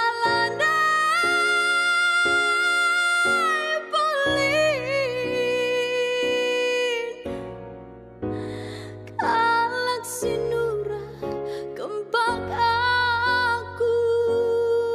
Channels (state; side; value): identical; both; correlation 1.00